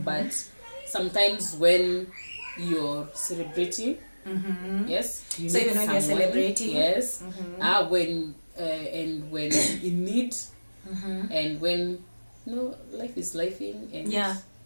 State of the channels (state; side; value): inverted; both; correlation -1.00